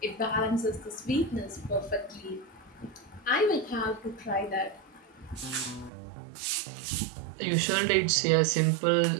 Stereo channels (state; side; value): drops out; left; at 5.9 s